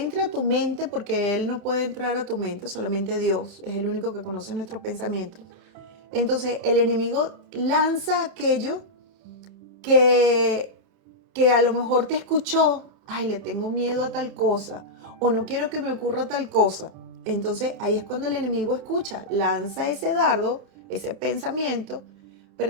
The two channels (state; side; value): late; left; 30 ms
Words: a tu mente porque él no puede entrar a tu mente, solamente Dios es el único que conoce nuestros pensamientos. Entonces, el enemigo lanza aquello que a lo mejor te escuchó, ay, le tengo miedo a tal cosa, o no quiero que me ocurra tal cosa. Entonces, ahí es cuando el enemigo escucha, lanza ese dardo, ese pensamiento, pero